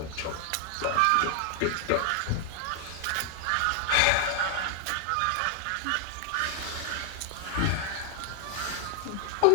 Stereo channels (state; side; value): different; both; correlation 0.00